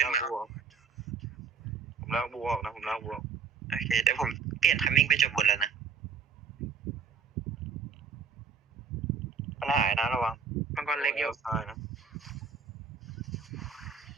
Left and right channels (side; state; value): left; quieter; 5.8 dB